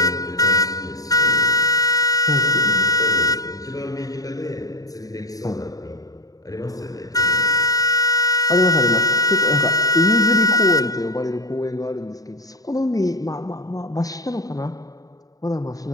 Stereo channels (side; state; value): right; late; 0.17 ms